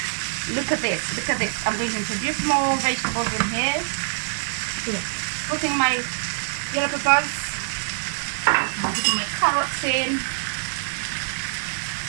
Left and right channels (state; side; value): silent; left; 62 dB below the other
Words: Look at this, look at this. I'm going to introduce more vegetables in here. So, putting my yellow peppers, I'm putting my carrots in,